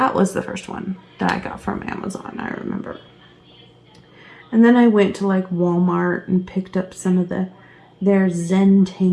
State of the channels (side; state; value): both; identical; correlation 1.00